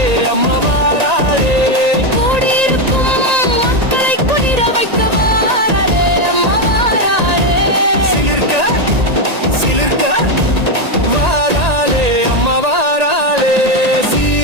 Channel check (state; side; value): late; left; 1.8 ms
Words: அம்மா வாராளே. கூடியிருக்கும் மக்களை குளிர வைக்க வாராளே, அம்மா வாராளே. சிலிர்க்க வாராளே, அம்மா வாராளே.